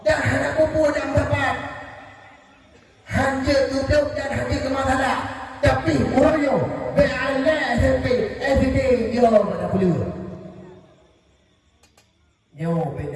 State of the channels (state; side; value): identical; both; correlation 1.00